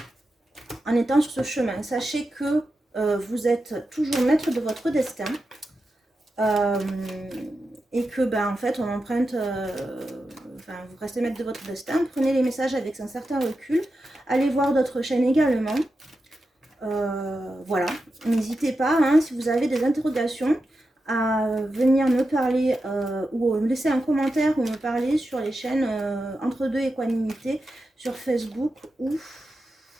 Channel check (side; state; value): both; normal; correlation 0.90